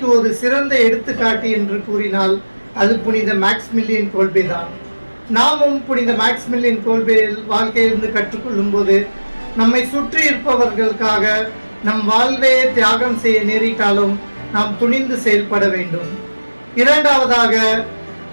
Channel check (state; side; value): inverted; both; correlation -1.00